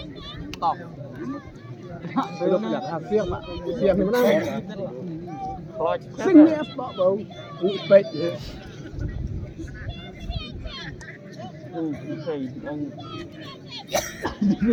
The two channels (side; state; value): both; identical; correlation 1.00